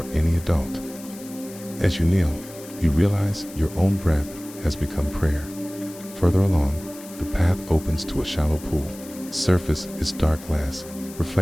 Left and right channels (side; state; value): left; noise; hiss, 18 dB below the sound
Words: any adult. As you kneel, you realize your own breath has become prayer. Further along, the path opens to a shallow pool. Surface is dark glass,